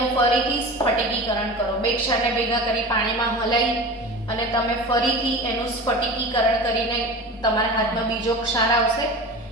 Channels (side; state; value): both; normal; correlation 0.33